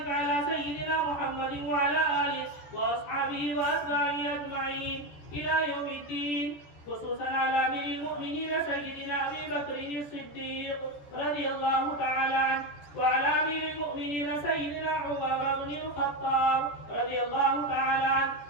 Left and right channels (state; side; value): late; right; 14 ms